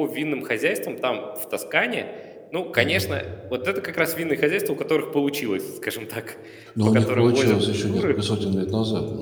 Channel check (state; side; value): identical; both; correlation 1.00